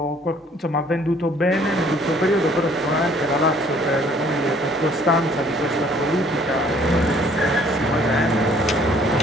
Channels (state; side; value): normal; both; correlation 0.59